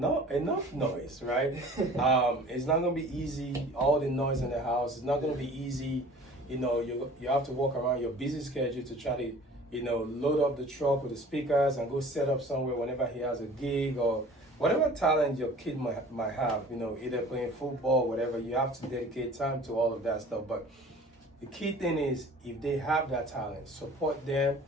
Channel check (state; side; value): normal; both; correlation 0.46